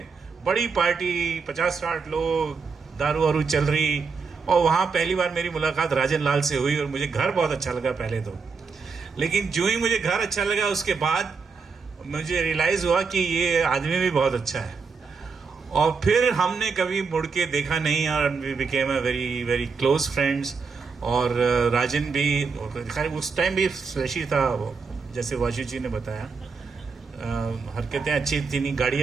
बड़ी पार्टी, 50-60 लोग, दारू वारू चल रही. और वहाँ पहली बार मेरी मुलाकात राजन लाल से हुई और मुझे घर बहुत अच्छा लगा पहले तो. लेकिन जो ही मुझे घर अच्छा लगा उसके बाद मुझे रियलाइज़ हुआ कि ये आदमी भी बहुत अच्छा है. और फिर हमने कभी मुड़ के देखा नहीं और we became a very very close friends. और राजन भी उस टाइम भी फ्लैशी था, जैसे वाशु जी ने बताया. हरकतें अच्छी थी, नहीं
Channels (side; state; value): left; quieter; 5.0 dB